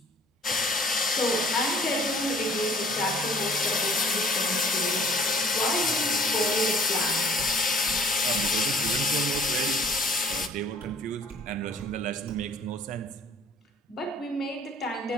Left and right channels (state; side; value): normal; both; correlation 0.54